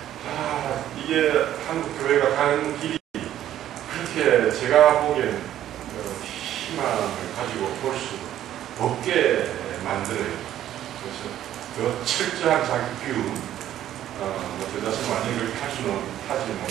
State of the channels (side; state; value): left; quieter; 11.9 dB